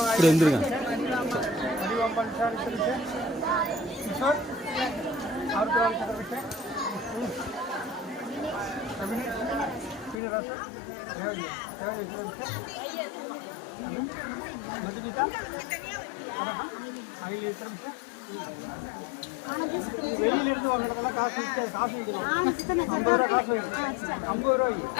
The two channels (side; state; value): right; drops out; at 10.2 s